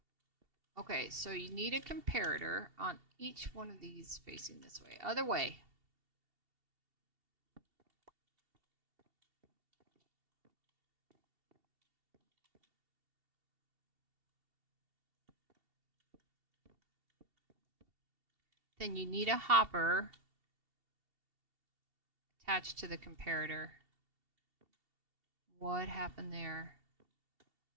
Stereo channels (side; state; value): left; late; 2.7 ms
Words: Okay, so you need a comparator on each one of these facing this way. Other way. Then you need a hopper attached to the comparator. What happened there?